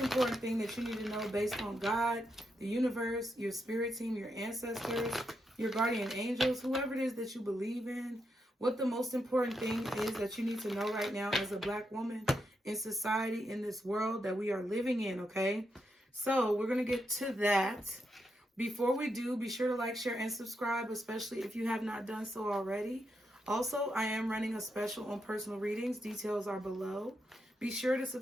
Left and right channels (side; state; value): both; normal; correlation 0.83